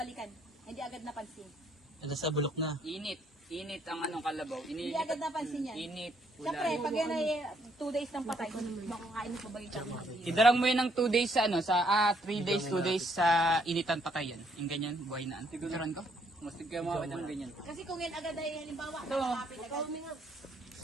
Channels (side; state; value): both; normal; correlation 0.69